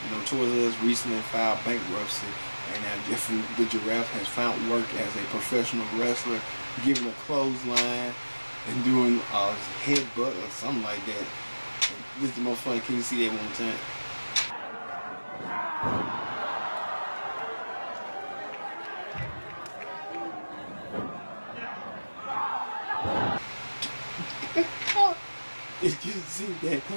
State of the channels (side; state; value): both; inverted; correlation -1.00